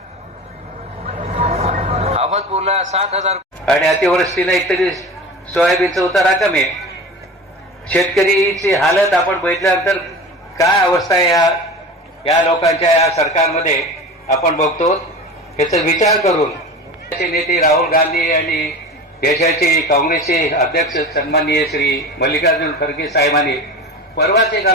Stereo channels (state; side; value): normal; both; correlation 0.33